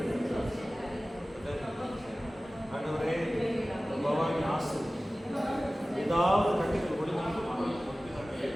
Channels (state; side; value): normal; both; correlation 0.97